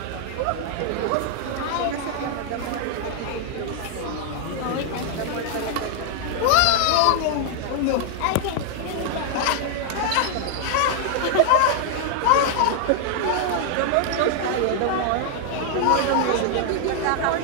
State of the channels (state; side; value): different; both; correlation 0.00